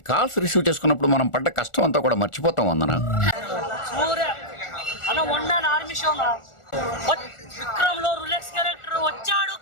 కాల్స్ రిసీవ్ చేసుకున్నప్పుడు మనం పడ్డ కష్టం అంతా కూడా మర్చిపోతాం. వందన విక్రమ్ లో రులెక్స్ క్యారెక్టర్ వచ్చాడు,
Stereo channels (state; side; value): late; right; 1.4 ms